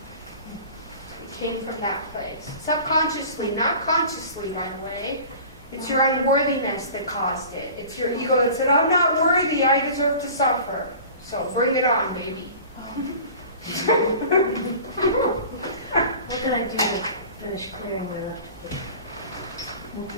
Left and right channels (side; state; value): both; inverted; correlation -0.41